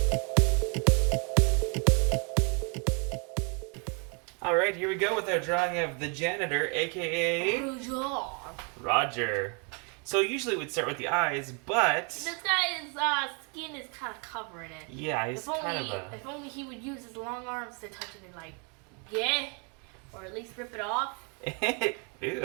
Alright, here we go with our drawing of the Janitor, a.k.a. Roger. So usually we'd start with the eyes, but... This guy's skin is kind of covering it. Yeah, he's If only he would use his long arms to touch it and or at least rip it off.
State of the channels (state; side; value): quieter; left; 35.9 dB